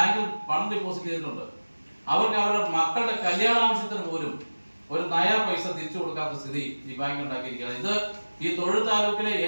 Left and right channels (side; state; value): both; inverted; correlation -1.00